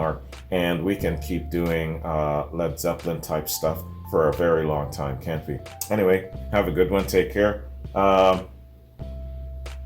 And we can keep doing Led Zeppelin type stuff for a very long time, can't we? Anyway, have a good one. Take care.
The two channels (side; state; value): both; identical; correlation 1.00